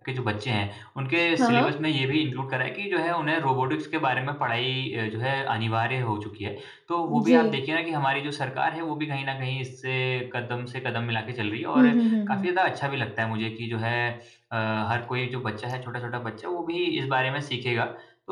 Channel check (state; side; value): identical; both; correlation 1.00